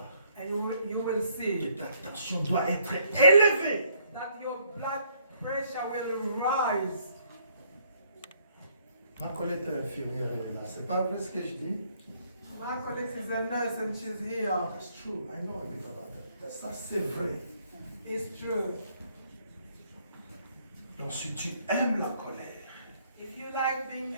and you will see que ta tension doit être élevée. that your blood pressure will rise. Ma collègue est infirmière, elle est là. C'est pas vrai ce que je dis? My colleague is a nurse and she's here. That's true. I know a bit about that. Ça, c'est vrai. It's true. Donc, si tu aimes la colère, If you like being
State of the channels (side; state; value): both; inverted; correlation -0.67